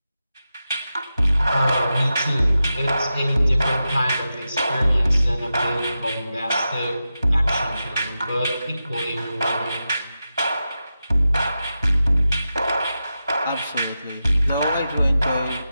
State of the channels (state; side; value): inverted; both; correlation -0.91